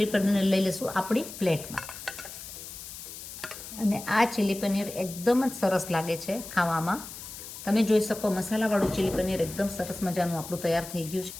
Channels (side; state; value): left; noise; hiss, 12 dB below the sound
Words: paneer લઈ લઈશું આપણી પ્લેટમાં. અને આ ચીલી પનીર એકદમ જ સરસ લાગે છે ખાવામાં. તમે જોઈ શકો મસાલાવાળું ચીલી પનીર એકદમ સરસ મજાનું આપણું તૈયાર થઈ ગયું છે.